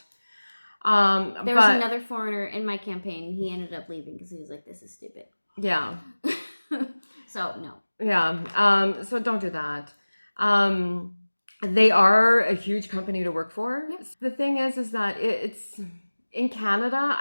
There was another foreigner in my campaign. He ended up leaving because he was like, "This is stupid." Yeah. So no. Yeah. So don't do that. They are a huge company to work for. Yep. The thing is that it's in Canada,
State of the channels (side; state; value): both; inverted; correlation -1.00